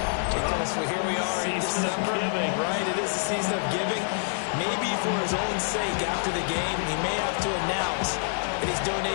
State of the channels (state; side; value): silent; right; digital silence